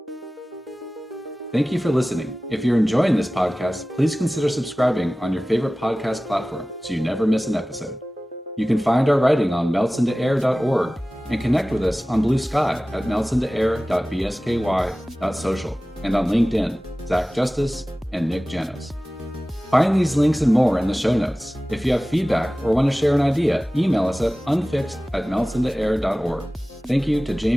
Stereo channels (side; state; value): both; normal; correlation 0.97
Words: Thank you for listening. If you're enjoying this podcast, please consider subscribing on your favorite podcast platform so you never miss an episode. You can find our writing on meltsintoair.org and connect with us on Blue Sky at meltsintoair.bsky.social and on LinkedIn, Zach Justice and Nick Janos. Find these links and more in the show notes. If you have feedback or want to share an idea, email us at unfixed@meltsintoair.org. Thank you to